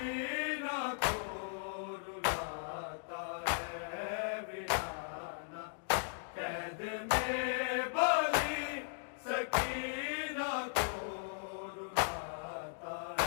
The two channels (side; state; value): right; silent; digital silence